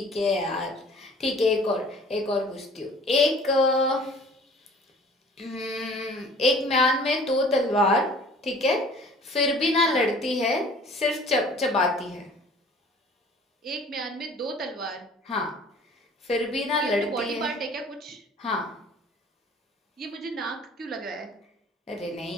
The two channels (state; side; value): normal; both; correlation 0.50